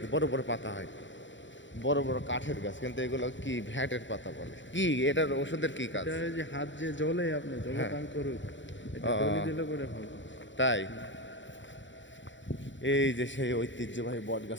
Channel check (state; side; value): late; right; 0.54 ms